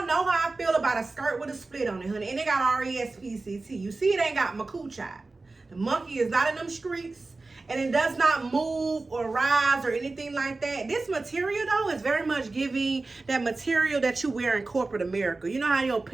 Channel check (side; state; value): left; quieter; 3.5 dB